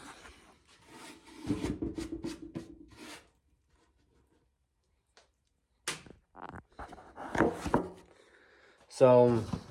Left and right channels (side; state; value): both; identical; correlation 1.00